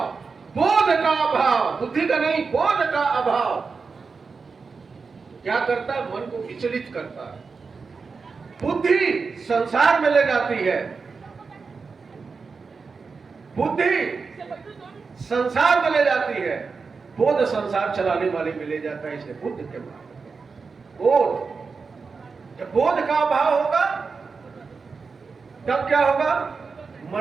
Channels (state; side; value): quieter; left; 4.8 dB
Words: बोध का अभाव, बुद्धि का नहीं, बोध का अभाव। क्या करता है? मन को विचलित करता है। बुद्धि संसार में ले जाती है, बुद्धि संसार में ले जाती है, बोध संसार चलाने वाले में ले जाता है। इसलिए बुद्ध के मार्ग, बोध। जब बोध का अभाव होगा तब क्या होगा?